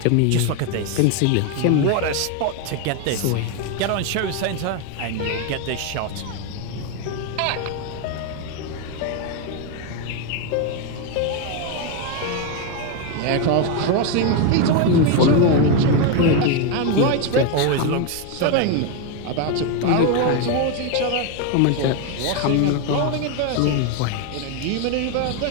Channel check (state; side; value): different; both; correlation 0.02